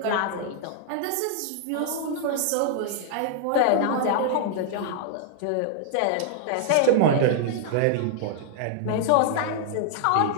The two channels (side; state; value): both; different; correlation -0.01